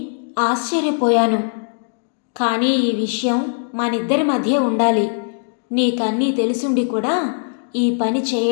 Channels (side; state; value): right; silent; digital silence